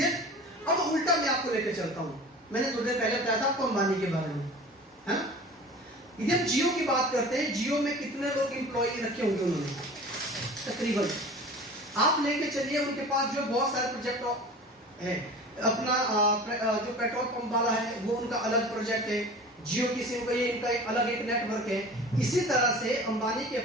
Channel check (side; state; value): both; normal; correlation 0.39